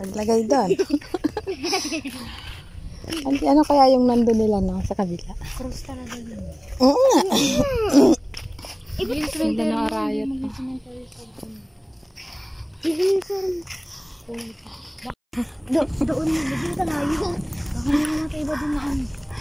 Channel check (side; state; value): both; identical; correlation 1.00